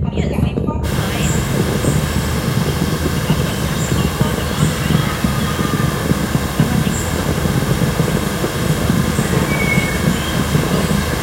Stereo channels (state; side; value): identical; both; correlation 1.00